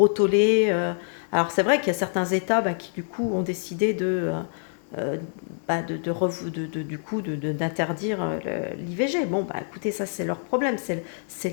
tollé. Alors c'est vrai qu'il y a certains États qui du coup ont décidé d'interdire l'IVG. Bon, écoutez, ça c'est leur problème, c'est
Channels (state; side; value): silent; right; digital silence